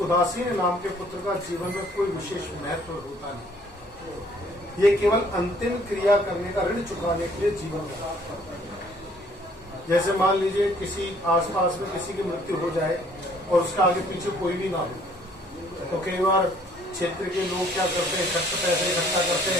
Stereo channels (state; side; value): normal; both; correlation 0.60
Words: उदासीन नाम के पुत्र का जीवन में कोई विशेष महत्व होता नहीं। ये केवल अंतिम क्रिया करने का, ऋण चुकाने के लिए जीवन में। जैसे मान लीजिए किसी आसपास में किसी की मृत्यु हो जाए और उसका आगे पीछे कोई भी ना हो, तो कई बार क्षेत्र के लोग क्या करते हैं, पैसे इकट्ठा करते